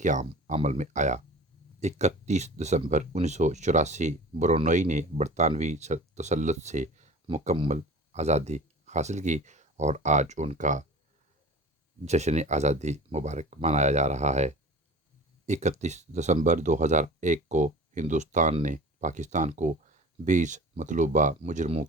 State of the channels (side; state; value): both; normal; correlation 0.39